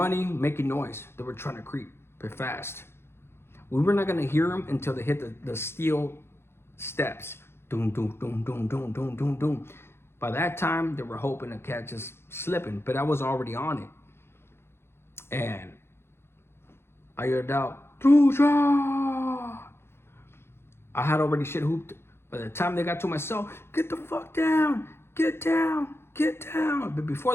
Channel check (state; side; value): late; right; 0.12 ms